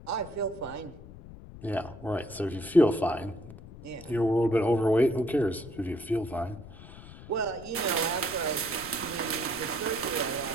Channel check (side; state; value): left; noise; rumble, 16 dB below the sound